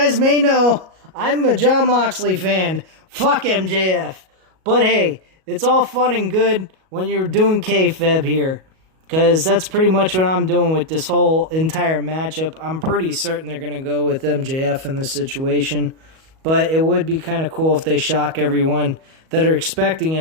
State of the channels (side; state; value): left; late; 37 ms